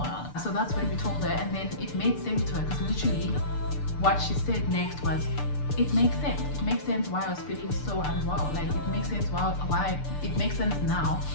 So that's when we told her, and then it made sense to her, because literally what she said next was, it makes sense. It makes sense why I was feeling so unwell. Like, it makes sense why it makes sense now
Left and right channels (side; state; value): right; late; 6.8 ms